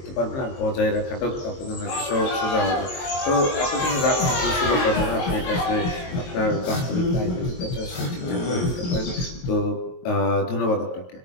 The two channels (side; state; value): right; late; 22 ms